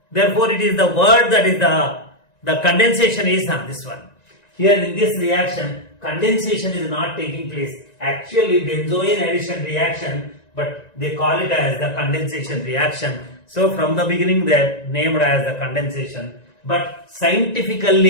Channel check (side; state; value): right; late; 1.9 ms